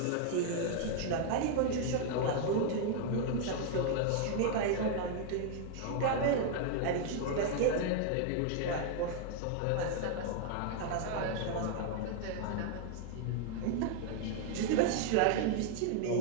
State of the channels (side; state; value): both; different; correlation 0.00